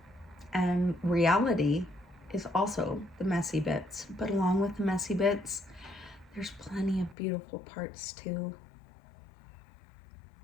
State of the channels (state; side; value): drops out; right; at 7.2 s